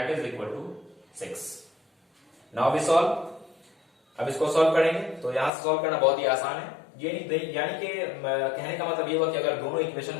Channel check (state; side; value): drops out; right; at 5.5 s